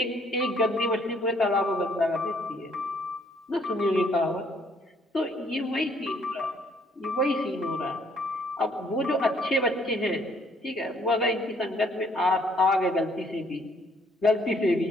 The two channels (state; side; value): normal; both; correlation 0.65